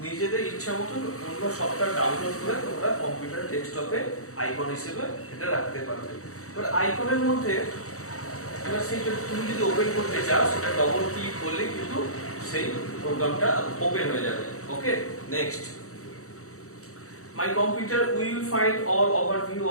নিজেদের ইচ্ছা মতো অন্য সফটওয়্যার ডাউনলোড করে তোমরা কম্পিউটার ডেস্কটপে আইকন হিসেবে এটা রাখতে পারবে। এবার আইকনের মধ্যে এবার সেইটা তুমি যদি ওপেন করতে চাও সেটা ডবল ক্লিক করলে কিন্তু সেই প্রোগ্রামটা ওপেন হয়ে যাবে। ওকে, next, my computer will find all overview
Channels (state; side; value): late; right; 0.65 ms